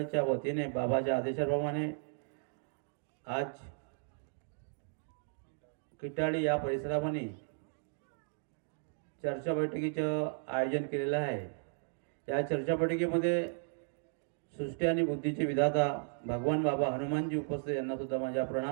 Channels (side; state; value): left; silent; digital silence